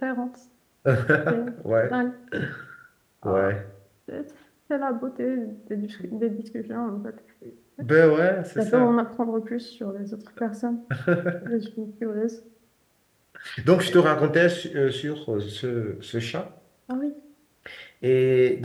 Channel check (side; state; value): both; identical; correlation 1.00